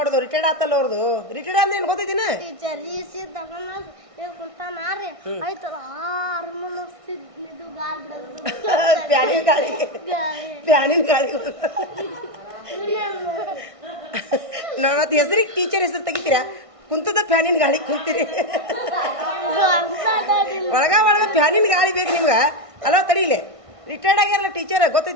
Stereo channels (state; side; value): late; left; 1.6 ms